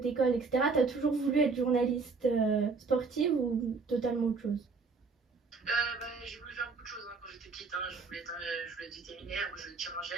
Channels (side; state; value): left; quieter; 4.5 dB